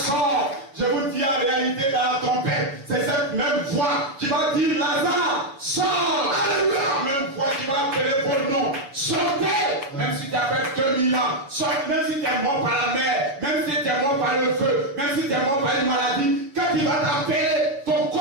Je vous dis en réalité dans la trompette, c'est cette même voix qui va dire Lazare sort. Alléluia. La même voix qui va appeler vos noms. Sortez. Même si tu as fait 2000 ans, sortez. Même si tu es mort par la mer, même si tu es mort par le feu, même si tu es mort par une maladie, quand il va t'appeler, ton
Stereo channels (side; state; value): left; late; 7.1 ms